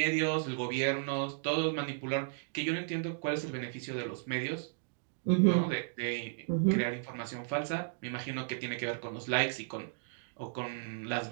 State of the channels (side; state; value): left; silent; digital silence